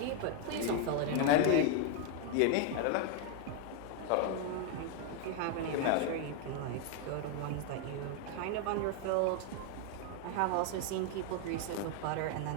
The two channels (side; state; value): both; different; correlation 0.01